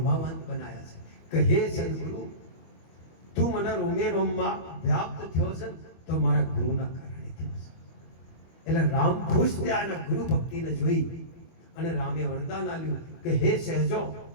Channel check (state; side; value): late; right; 25 ms